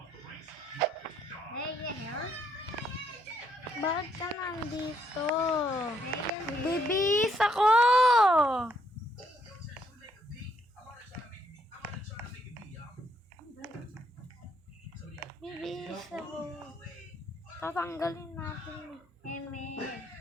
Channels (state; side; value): normal; both; correlation 0.72